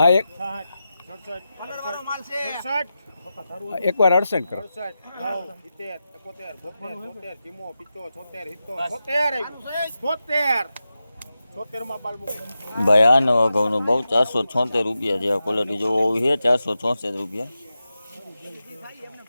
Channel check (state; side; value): inverted; both; correlation -0.91